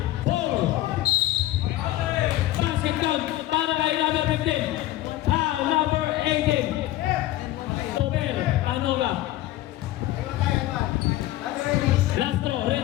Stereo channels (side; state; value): right; quieter; 15.4 dB